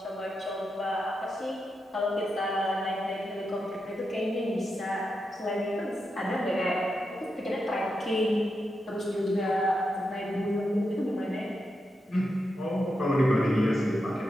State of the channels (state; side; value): normal; both; correlation 0.86